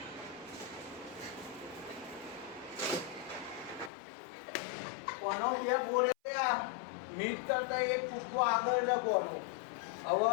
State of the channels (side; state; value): right; drops out; at 3.9 s